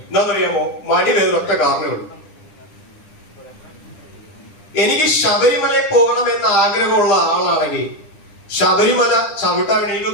എന്താണെന്നറിയാമോ? മടി വേറൊറ്റ കാരണമുള്ളൂ. എനിക്ക് ശബരിമലയിൽ പോകണമെന്ന് ആഗ്രഹമുള്ള ആളാണെങ്കിൽ ശബരിമല ചവിട്ടാൻ വേണ്ടി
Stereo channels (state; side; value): late; right; 10 ms